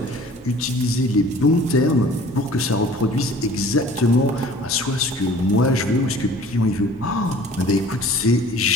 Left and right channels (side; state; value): both; normal; correlation 0.48